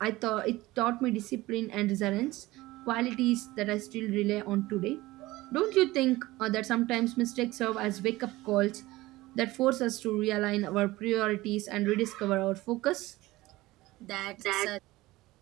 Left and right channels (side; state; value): left; quieter; 18.8 dB